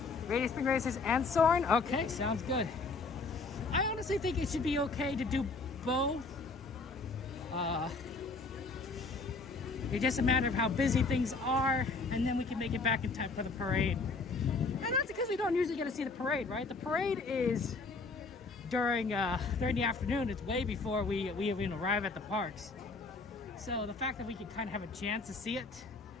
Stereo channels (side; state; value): right; quieter; 3.9 dB